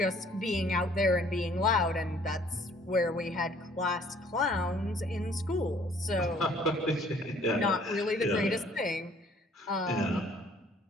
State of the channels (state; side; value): normal; both; correlation 0.58